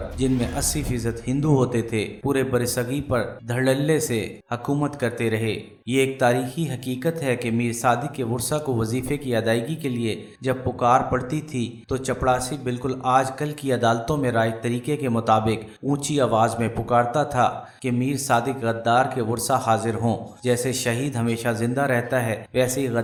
جن میں 80% ہندو ہوتے تھے، پورے بر صغیر پر دھڑلے سے حکومت کرتے رہے۔ یہ ایک تاریخی حقیقت ہے کہ میر صادق کے ورثا کو وظیفے کی ادائیگی کے لیے جب پکار پڑتی تھی تو چپڑاسی بالکل آج کل کی عدالتوں میں رائج طریقے کے مطابق اونچی آواز میں پکارتا تھا کہ میر صادق غدار کے ورثا حاضر ہوں۔ جیسے شہید ہمیشہ زندہ رہتا ہے، ویسے ہی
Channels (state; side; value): identical; both; correlation 1.00